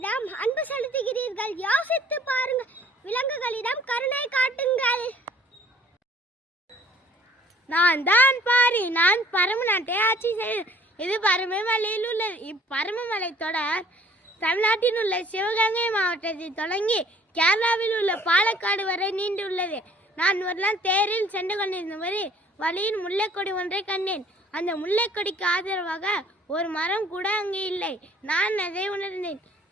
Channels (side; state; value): both; normal; correlation 0.55